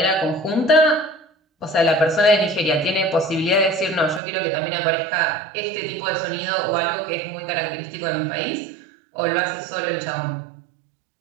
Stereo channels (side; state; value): left; drops out; at 4.2 s